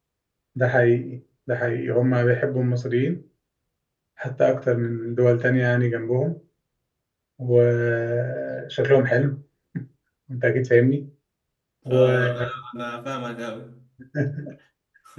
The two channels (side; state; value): both; identical; correlation 1.00